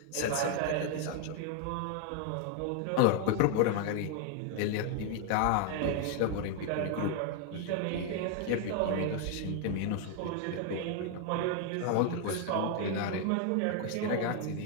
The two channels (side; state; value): both; different; correlation 0.00